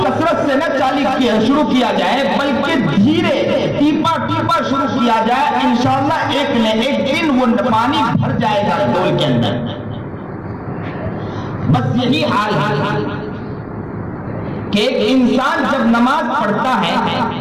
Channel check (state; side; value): identical; both; correlation 1.00